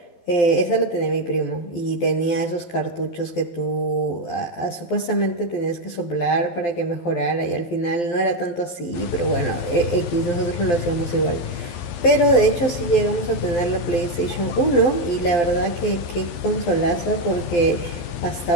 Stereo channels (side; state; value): right; late; 12 ms